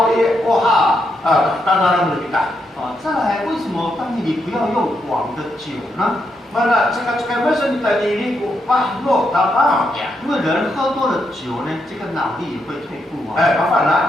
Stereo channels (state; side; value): normal; both; correlation 0.81